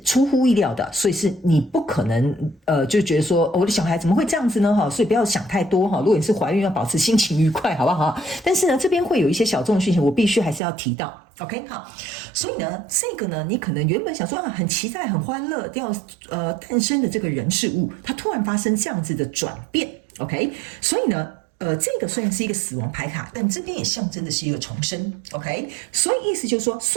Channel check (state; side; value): drops out; left; at 10.6 s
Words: 出乎意料的，所以是你不可能就觉得说我的小孩怎么会这样子呢所以不要想太多如果你是怀孕要保持心情愉快好不好但是呢这边会有一些小众的讯息我必须还是要提到 OK 好，所以呢这个呢你可能原本想说很期待很欢乐要诞生的这个人事物，它突然发生这样子的转变 OK， 所以呢这个虽然是一个死亡牌卡，但这边也象征的是一个重生 OK， 所以意思就是说